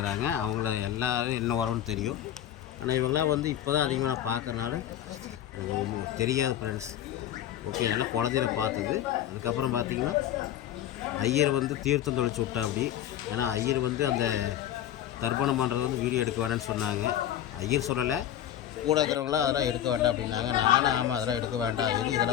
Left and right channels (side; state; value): right; quieter; 11.3 dB